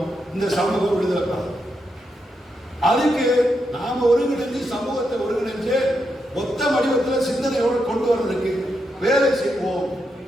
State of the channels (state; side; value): normal; both; correlation 0.83